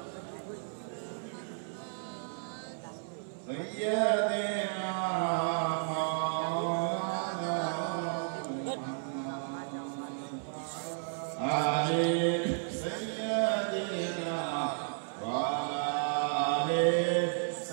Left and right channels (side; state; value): left; silent; 56 dB below the other